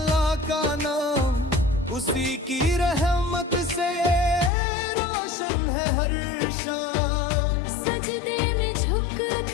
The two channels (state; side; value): drops out; right; at 4.5 s